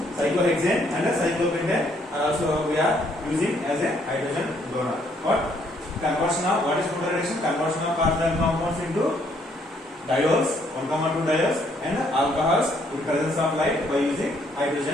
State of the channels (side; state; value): both; normal; correlation 0.68